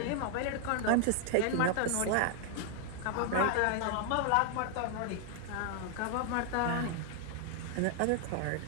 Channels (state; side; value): different; both; correlation 0.00